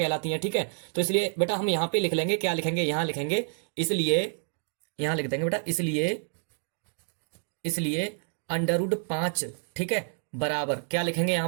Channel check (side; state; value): left; silent; digital silence